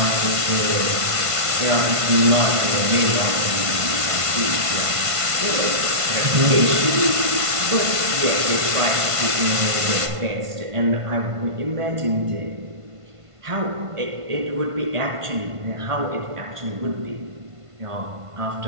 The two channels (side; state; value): left; late; 1.5 ms